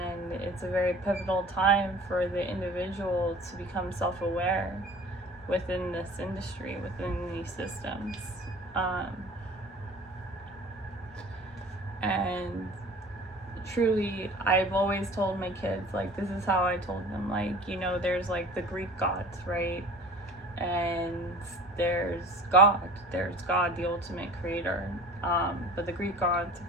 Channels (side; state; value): both; normal; correlation 0.43